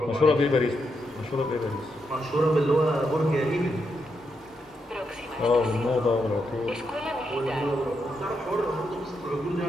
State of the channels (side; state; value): both; normal; correlation 0.82